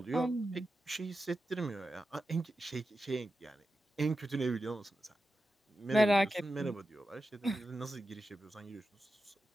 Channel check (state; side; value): normal; both; correlation 0.90